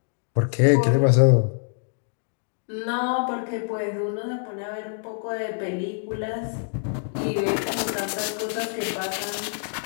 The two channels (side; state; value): right; silent; digital silence